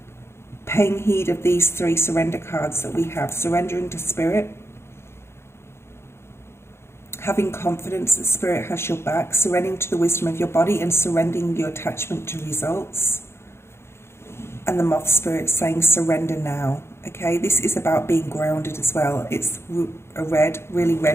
paying heed of these 3 surrender cards that we have. Surrendering to Spirit, having confidence that Spirit has your back, surrendering to the wisdom of your body, and surrendering your attachment to results. And the moth spirit saying surrender now, okay? This is about being grounded as well. It's a red, really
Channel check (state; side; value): late; right; 0.12 ms